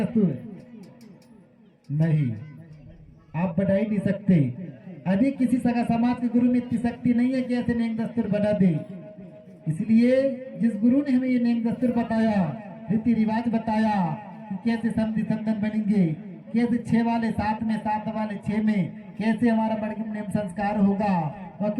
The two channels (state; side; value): identical; both; correlation 1.00